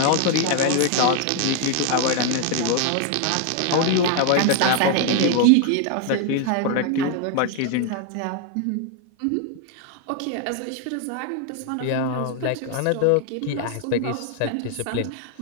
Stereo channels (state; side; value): different; both; correlation 0.00